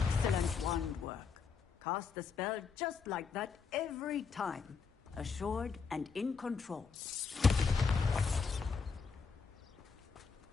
wand work. Cast the spell just like that every time. Assured and in control.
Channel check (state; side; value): quieter; right; 5.4 dB